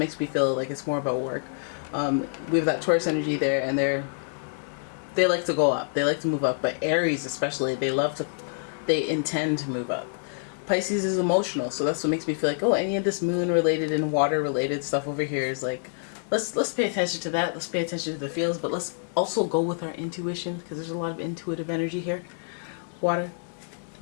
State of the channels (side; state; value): right; silent; digital silence